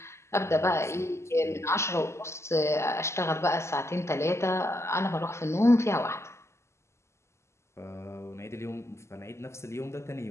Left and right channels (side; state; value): right; late; 0.13 ms